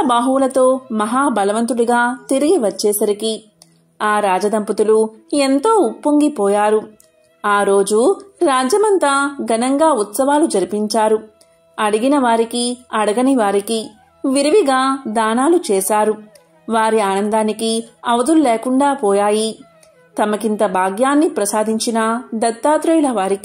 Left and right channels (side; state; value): both; identical; correlation 1.00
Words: బాహువులతో మహాబలవంతుడిగా తిరిగి వచ్చేసరికి ఆ రాజదంపతులు ఎంతో ఉప్పొంగిపోయారు. ఆ రోజు రాజ్యమంతా ఘనంగా ఉత్సవాలు జరిపించారు. అడిగిన వారికి, అడగని వారికి విరివిగా దానాలు చేశారు. వారి ఆనందానికి అవధులు లేకుండా పోయాయి. తమకింత భాగ్యాన్ని ప్రసాదించిన దత్తాత్రేయుల